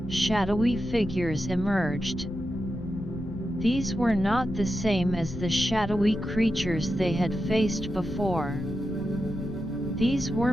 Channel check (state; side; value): noise; left; rumble, 11 dB below the sound